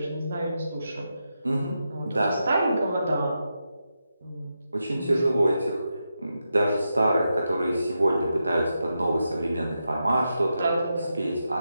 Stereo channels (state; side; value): inverted; both; correlation -0.87